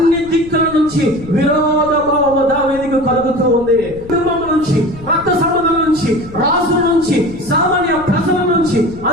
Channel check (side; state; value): left; noise; rumble, 17 dB below the sound